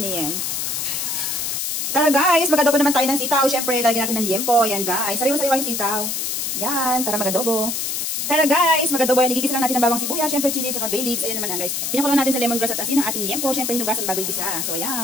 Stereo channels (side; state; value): left; noise; hiss, 2 dB below the sound